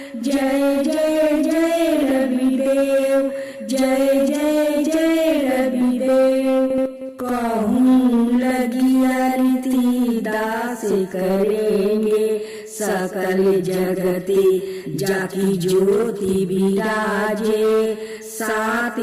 जय जय जय रवि देव, जय जय जय रवि देव। कहूँ लगी आरती दास करेंगे, सकल जगती जाकी ज्योति विराजे। सात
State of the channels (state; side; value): identical; both; correlation 1.00